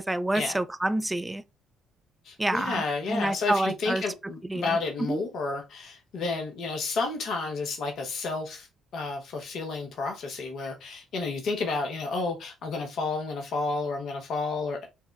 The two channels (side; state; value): both; normal; correlation 0.79